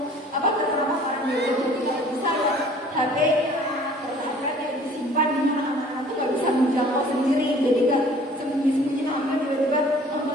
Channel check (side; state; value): both; normal; correlation 0.52